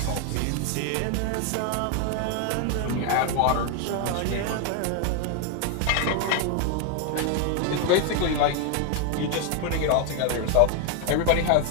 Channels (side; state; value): both; different; correlation 0.01